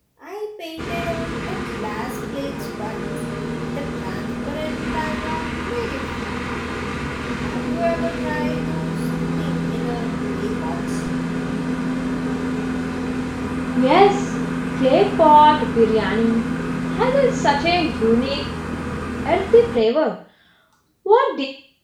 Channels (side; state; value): both; identical; correlation 1.00